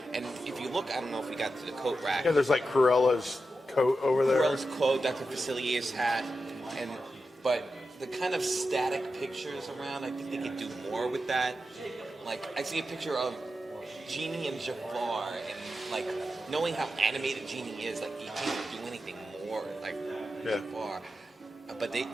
And if you look, I don't know if we got to the coat rack. Yeah, there's like Cruella's coat over there. Cruella's coat, Dr. Facilier's hat, but the kind of static pictures around, I think they could do more with that. Like, I see a picture of Genie and Jafar, and like knowing how animated Genie is, like you can't do anything more like Jafar. But they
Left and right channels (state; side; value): normal; both; correlation 0.90